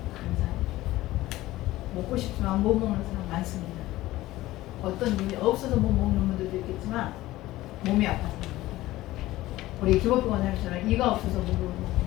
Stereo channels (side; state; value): right; quieter; 16.8 dB